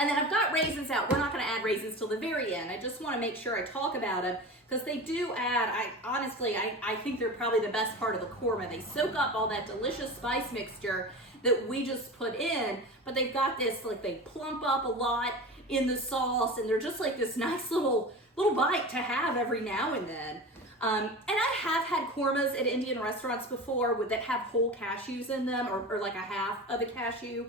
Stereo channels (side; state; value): both; normal; correlation 0.30